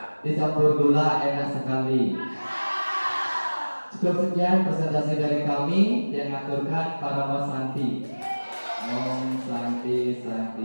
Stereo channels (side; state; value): both; inverted; correlation -1.00